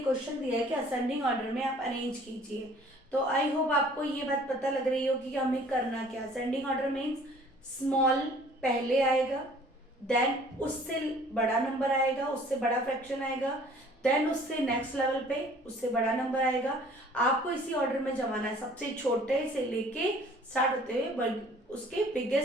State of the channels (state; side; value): normal; both; correlation 0.53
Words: क्वेश्चन दिया है कि असेंडिंग ऑर्डर में आप अरेंज कीजिए। तो आई होप आपको ये बात पता लग रही होगी कि हमें करना क्या। असेंडिंग ऑर्डर मीन्स स्मॉल पहले आएगा, देन उससे बड़ा नंबर आएगा, उससे बड़ा फ्रैक्शन आएगा, देन उससे नेक्स्ट लेवल पे उससे बड़ा नंबर आएगा। आपको इसी ऑर्डर में जमाना है, सबसे छोटे से लेके स्टार्ट होते हुए उसके